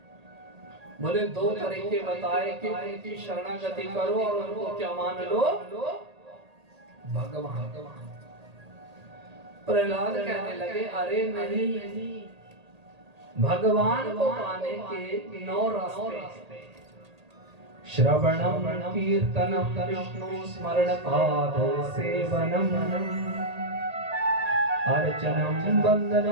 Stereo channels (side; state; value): left; late; 1.8 ms